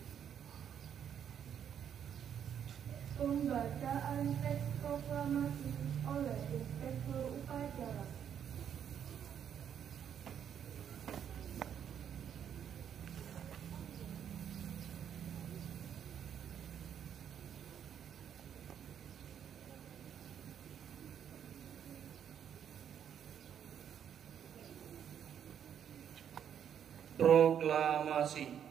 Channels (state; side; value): quieter; left; 8.8 dB